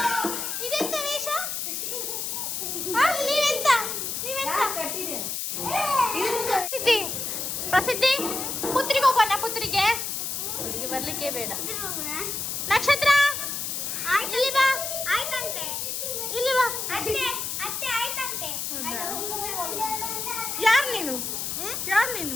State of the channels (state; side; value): noise; left; hiss, 3 dB below the sound